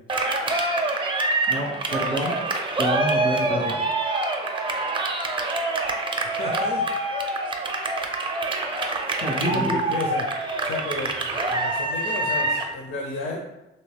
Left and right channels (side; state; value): both; normal; correlation 0.09